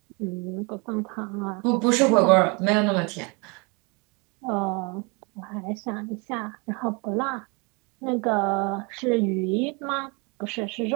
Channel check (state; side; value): quieter; left; 30.5 dB